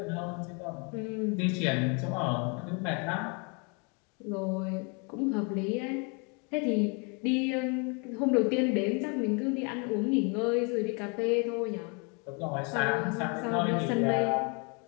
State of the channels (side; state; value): right; quieter; 34.2 dB